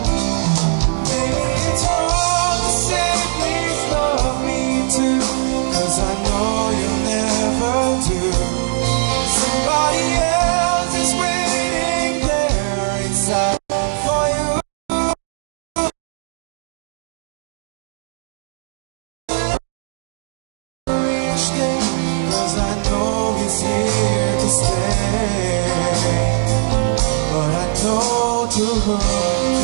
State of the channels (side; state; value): left; silent; 55 dB below the other